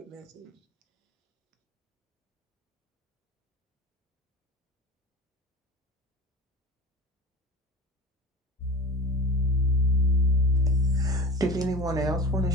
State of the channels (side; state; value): both; normal; correlation 0.34